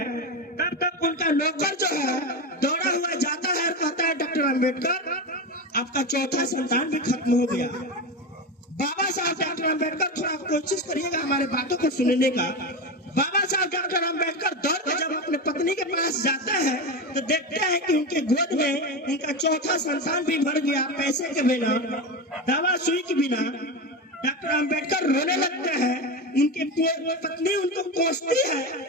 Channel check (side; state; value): both; normal; correlation 0.18